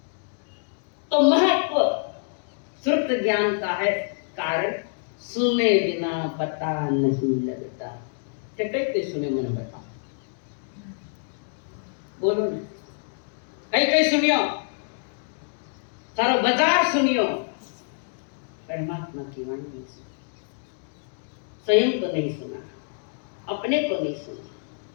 तो महत्व श्रुत ज्ञान का है, कारण सुने बिना पता नहीं लगता। कई सुने मन बता, बोलो ना, कई सुनियो, सारो बाजार सुनियो, परमात्मा की वाणी नहीं सुनी, स्वयं को नहीं सुना, अपने को नहीं सुना,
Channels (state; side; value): silent; right; digital silence